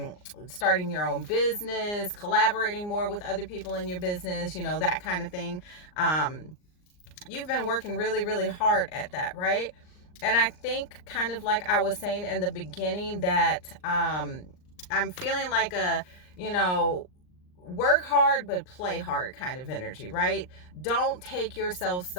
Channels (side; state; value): right; late; 39 ms